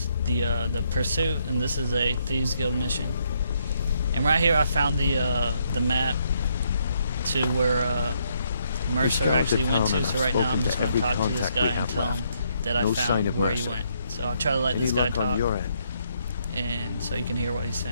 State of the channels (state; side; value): inverted; both; correlation -0.73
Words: the Pursuit, and this is a Thieves Guild mission. And right here I found the map to where Mercer actually went to, so right now I'm just going to talk to this guy and tell him that I found where he went. So I'll try to let this guy talk, and so you can hear what he's